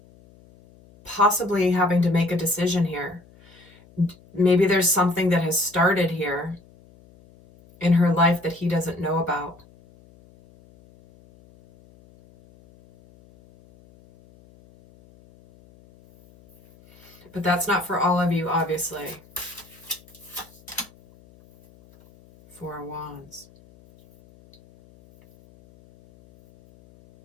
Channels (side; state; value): left; noise; hum, 26 dB below the sound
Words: possibly having to make a decision here. Maybe there's something that has started here in her life that he doesn't know about. But that's not for all of you, obviously. Four of Wands.